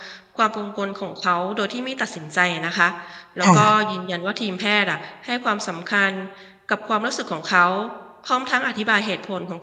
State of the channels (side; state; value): both; identical; correlation 1.00